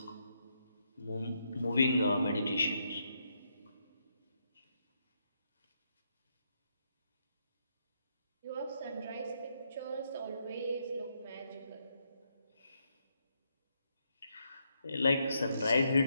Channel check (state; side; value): inverted; both; correlation -0.78